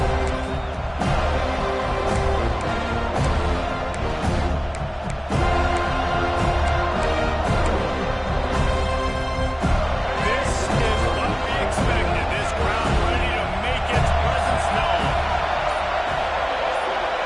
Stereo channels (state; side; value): identical; both; correlation 1.00